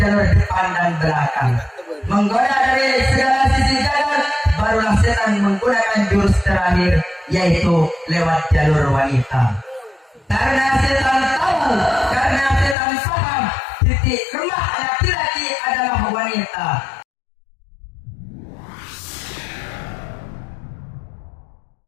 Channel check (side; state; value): right; drops out; at 12.8 s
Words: depan dan belakang. Menggoda dari segala sisi gagal, barulah setan menggunakan jurus terakhir, yaitu lewat jalur wanita. Karena setan tahu, karena setan paham, titik lemah laki-laki adalah wanita.